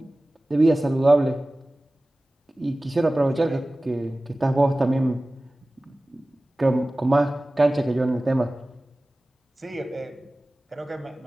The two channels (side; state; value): both; normal; correlation 0.97